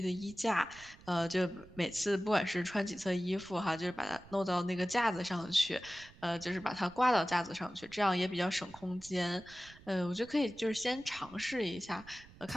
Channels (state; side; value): noise; right; rumble, 21 dB below the sound